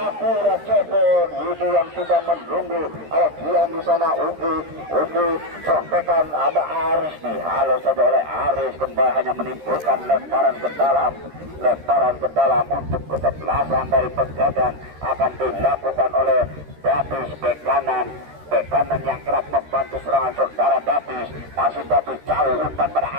Jebon. Widi yang sudah menunggu. Ada Gian di sana. Ugi contekan ada Aris. Dihalau saja oleh Aris. Kembali hanya menimbulkan lemparan ke dalam. Lemparan ke dalam untuk kesebelasan dari Pegadaian akan dilakukan oleh Dapis bek kanan. Bek kanan yang kerap membantu serangan saudara Dapis. Masih Dapis jauh umpan pada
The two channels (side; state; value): left; late; 13 ms